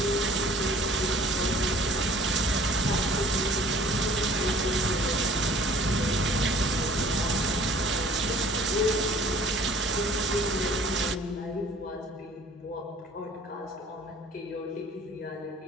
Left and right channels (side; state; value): both; normal; correlation 0.52